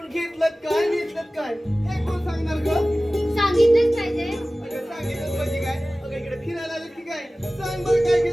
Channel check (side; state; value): both; normal; correlation 0.97